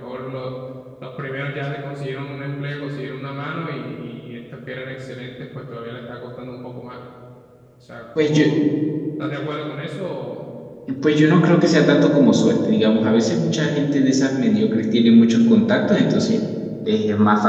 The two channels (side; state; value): both; identical; correlation 1.00